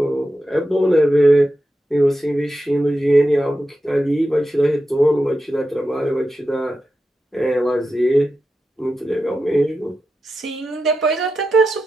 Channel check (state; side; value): normal; both; correlation 0.90